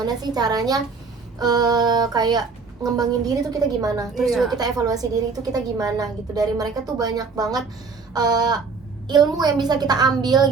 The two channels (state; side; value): quieter; left; 4.7 dB